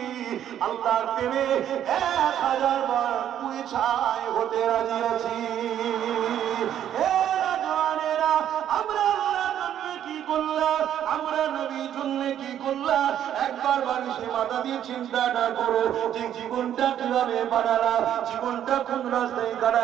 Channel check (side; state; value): left; quieter; 10.5 dB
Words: আল্লাহর প্রেমে 1000 বার পুড়ে ছাই হতে রাজি আছি। আমরা আল্লাহর জন্য কি করলাম, আমরা নবীর জন্য কি করলাম, একবার বালিশে মাথা দিয়ে চিন্তাটা করো যে জীবনটা কিভাবে বানালাম, জীবনটা কোন রাস্তায়